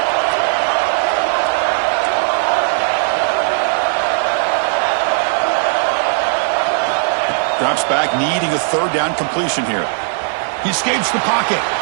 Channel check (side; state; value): left; silent; 61 dB below the other